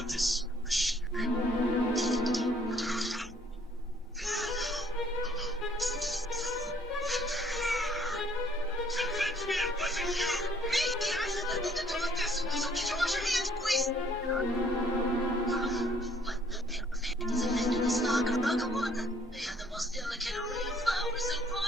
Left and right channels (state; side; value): normal; both; correlation 0.62